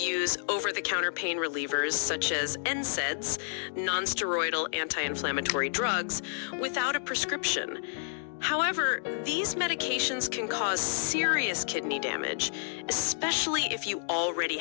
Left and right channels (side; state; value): right; silent; digital silence